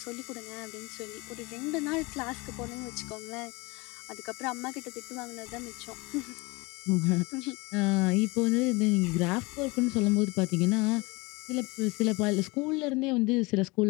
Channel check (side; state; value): right; quieter; 24.9 dB